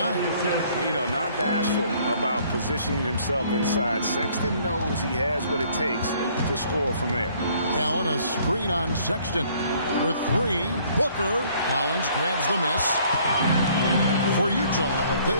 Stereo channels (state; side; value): inverted; both; correlation -0.60